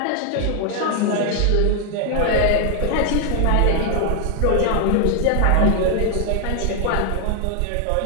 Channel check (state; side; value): different; both; correlation 0.00